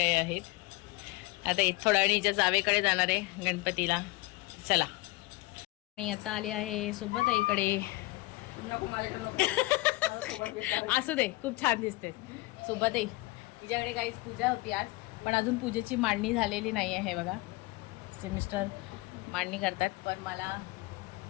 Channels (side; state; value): right; quieter; 22.1 dB